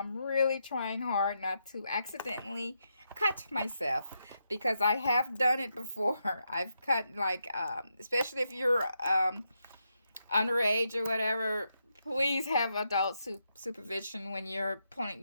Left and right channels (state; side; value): inverted; both; correlation -0.83